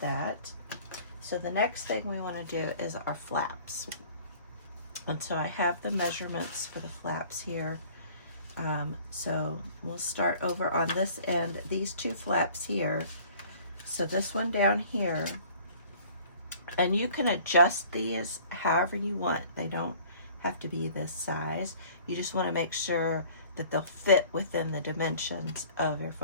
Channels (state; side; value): inverted; both; correlation -0.51